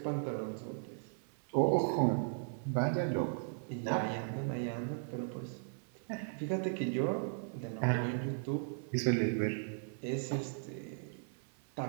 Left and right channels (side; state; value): left; silent; 53 dB below the other